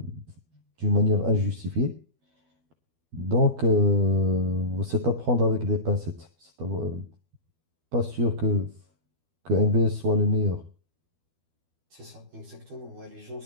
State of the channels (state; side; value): late; left; 12 ms